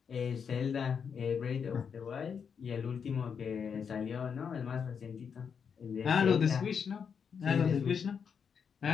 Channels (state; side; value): quieter; right; 6.7 dB